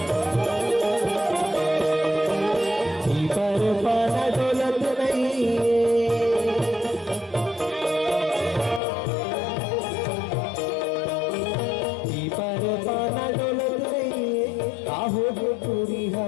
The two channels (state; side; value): drops out; right; at 8.8 s